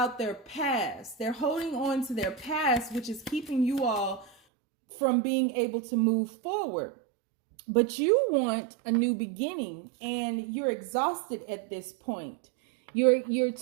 their past. They're holding on to their past, which is keeping you all from being able to move forward. But you want a new beginning, and you're exhausted at this point. You're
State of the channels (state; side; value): drops out; left; at 4.4 s